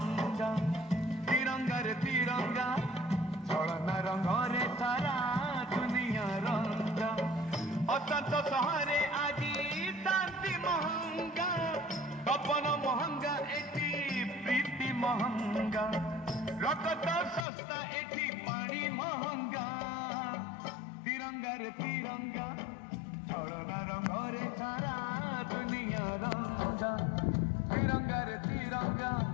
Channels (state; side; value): drops out; right; at 17.4 s